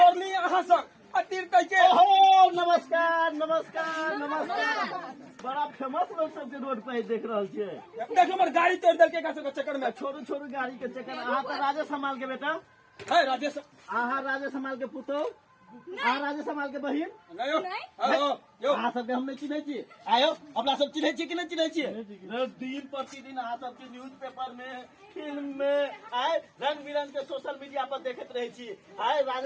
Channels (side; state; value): both; identical; correlation 1.00